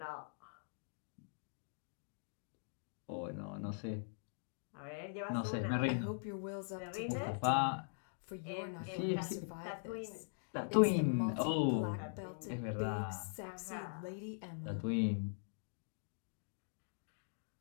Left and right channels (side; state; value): right; silent; digital silence